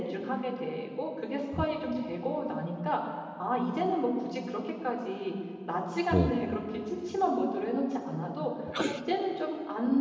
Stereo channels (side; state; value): both; identical; correlation 1.00